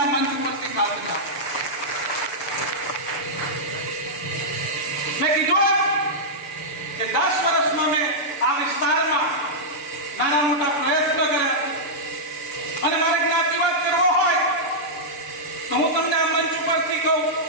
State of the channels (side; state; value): right; late; 7.2 ms